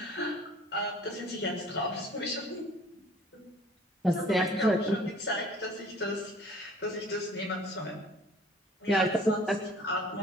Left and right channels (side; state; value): both; normal; correlation 0.51